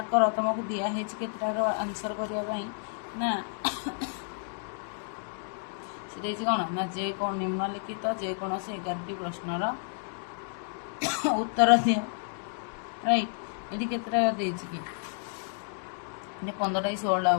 କର, ତୁମକୁ ଦିଆହେଇଛି କେତେଟାର ଆନ୍ସର କରିବା ପାଇଁ ନା ସେ ଦେଇଛି କ'ଣ ନା ନିମ୍ନଲିଖିତ ଯେକୌଣସି 11ଟି ପ୍ରଶ୍ନର ଉତ୍ତର ଦିଅ, ରାଇଟ୍। ଏଠି କେତେଟା ଦେଇଛି କି, ଏଠି 15ଟା କି 16ଟା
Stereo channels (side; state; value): right; silent; digital silence